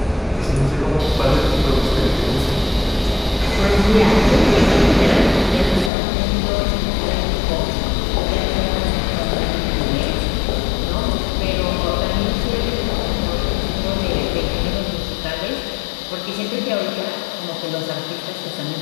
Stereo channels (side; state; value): right; drops out; at 5.9 s